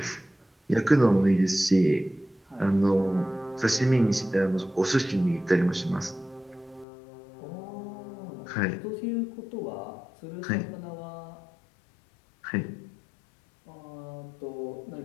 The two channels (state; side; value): drops out; right; at 6.9 s